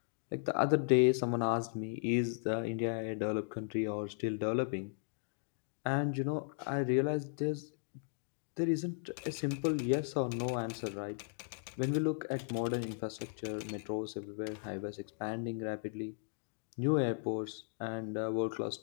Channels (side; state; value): right; silent; digital silence